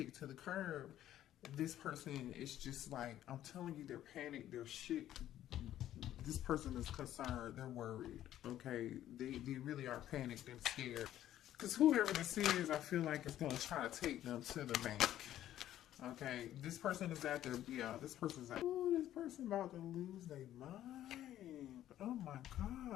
to the curb, this person is just like, I'm telling you, they're panicked, they're shit. This person is concerned, they're worried, okay? They really are panicked and scared. Because whoever this is, I feel like it's going to try to take them to the bank. Okay, this person is at their, this person's like, oh, this person about to lose their mind. Oh my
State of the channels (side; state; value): right; quieter; 12.4 dB